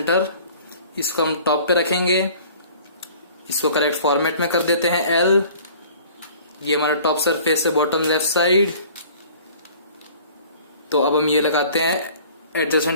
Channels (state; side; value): inverted; both; correlation -0.49